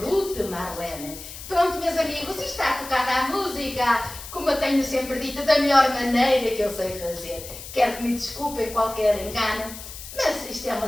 Ruth Marlene. Pronto, meus amigos, está tocada a música, como eu tenho sempre dito, da melhor maneira que eu sei fazer. Quero que me desculpem qualquer engano, mas isto é uma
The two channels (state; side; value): noise; left; hiss, 13 dB below the sound